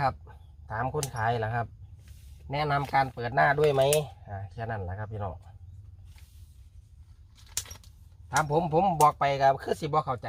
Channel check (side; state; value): both; identical; correlation 1.00